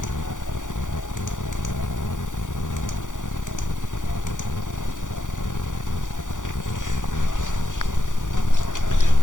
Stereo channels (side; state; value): right; late; 0.87 ms